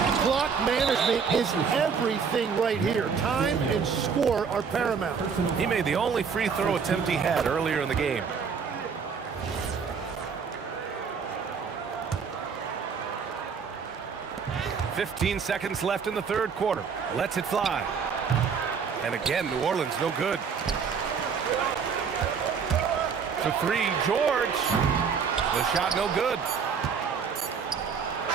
Clock management is everything right here. Time and score are paramount. He made the only free throw attempt he had earlier in the game. "15 seconds left in the third quarter. Lets it fly. And again, New Orleans no good. For 3, George. The shot no good.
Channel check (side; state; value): left; quieter; 6.2 dB